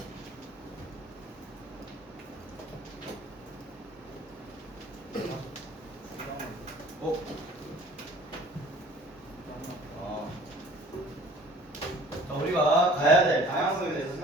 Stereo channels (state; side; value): normal; both; correlation 0.50